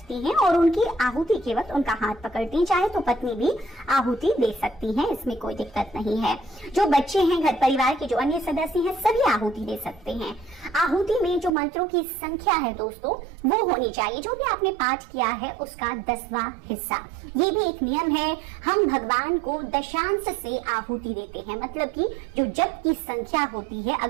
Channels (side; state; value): left; drops out; at 11.5 s